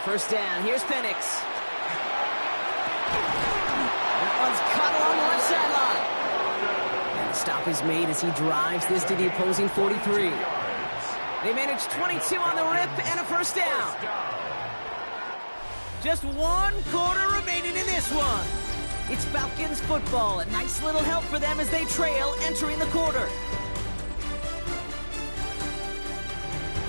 down, here's Penix. That one's caught along the left sideline. And the stop is made as he drives this to the opposing 43. They manage 22 on the rip and a first down. Just 1 quarter remaining in this one. It's Falcons football. A nice little help for them as they trail entering the quarter.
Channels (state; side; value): inverted; both; correlation -1.00